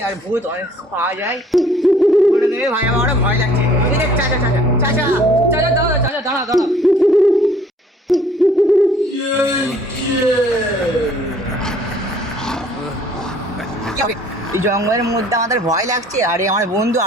আর ভূত অনেক পাওয়া যায়। বলে দেবে ভাই, আমারও ভয় লাগছে। চাচা চাচা চাচা চাচা দাঁড়া, চাচা দাঁড়া দাঁড়া। এই জঙ্গলের মধ্যে আমাদের ভয় লাগছে, আরে আমার বন্ধু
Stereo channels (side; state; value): both; normal; correlation 0.57